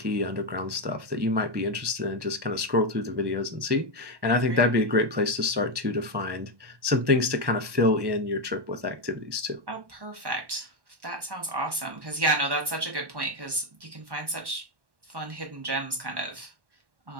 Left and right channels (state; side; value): late; left; 1.1 ms